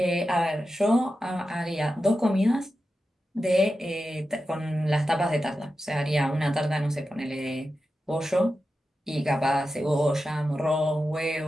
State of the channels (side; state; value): both; normal; correlation 0.91